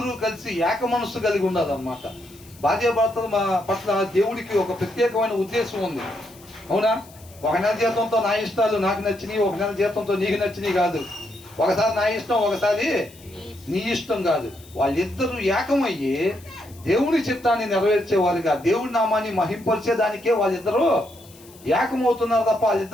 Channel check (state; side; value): noise; left; hiss, 24 dB below the sound